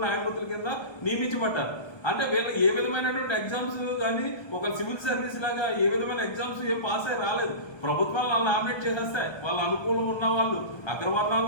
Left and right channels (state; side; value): late; right; 1.3 ms